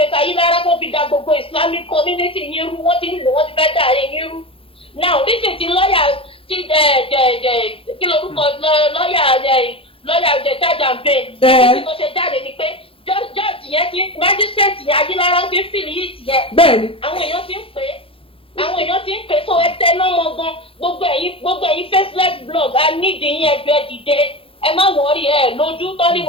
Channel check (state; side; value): late; right; 0.26 ms